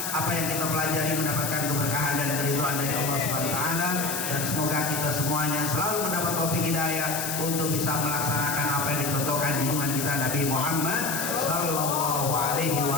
apa yang kita pelajari mendapatkan keberkahan dan keridhaan dari Allah Subhanahu wa taala, dan semoga kita semuanya selalu mendapat taufik hidayah untuk bisa melaksanakan apa yang dicontohkan junjungan kita Nabi Muhammad sallallahu alaihi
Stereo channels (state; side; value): noise; left; hiss, 3 dB below the sound